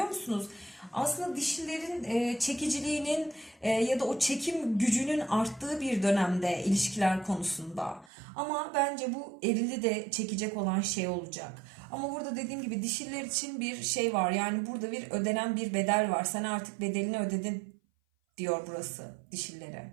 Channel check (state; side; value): drops out; left; at 8.1 s